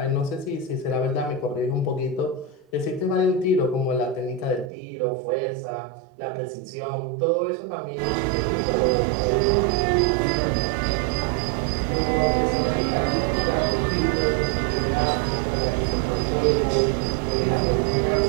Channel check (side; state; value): left; drops out; at 4.7 s